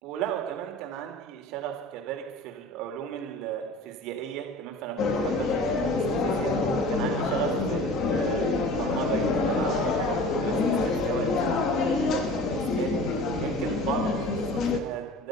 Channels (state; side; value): normal; both; correlation 0.40